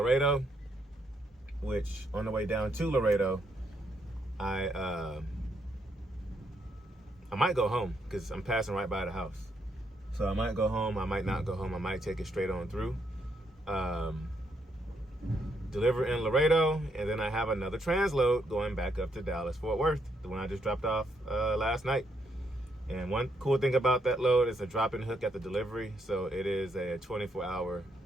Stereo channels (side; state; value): both; normal; correlation 0.76